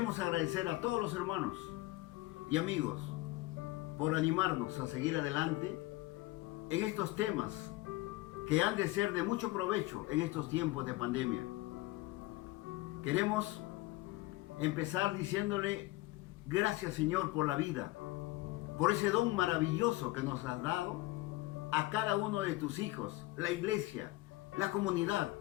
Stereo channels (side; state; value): right; quieter; 19.7 dB